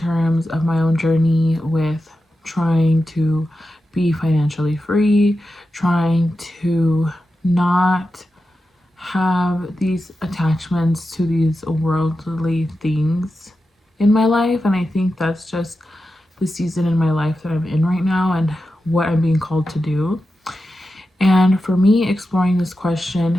of my own journey with trying to be financially free, trying to not have these attachments to these worldly things in my life. And I think that's just the season in my life that I'm in right now and what I'm being called to do. And for me, exploring this question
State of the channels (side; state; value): both; normal; correlation 0.91